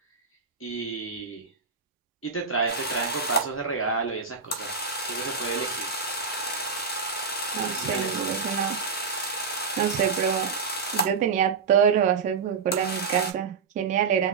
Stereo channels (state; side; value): quieter; left; 5.4 dB